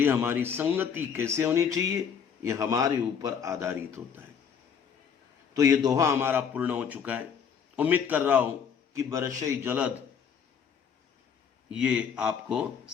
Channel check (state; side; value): quieter; right; 7.1 dB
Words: हमारी संगति कैसे होनी चाहिए, यह हमारे ऊपर आधारित होता है। तो ये दोहा हमारा पूर्ण हो चुका है। उम्मीद कर रहा हूं कि बरशई जलद ये आपको